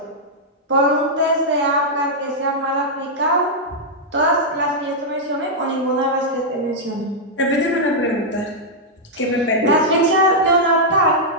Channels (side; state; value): both; normal; correlation -0.06